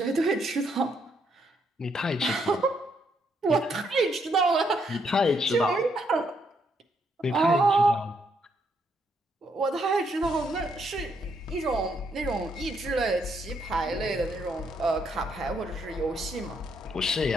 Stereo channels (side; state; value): both; normal; correlation 0.74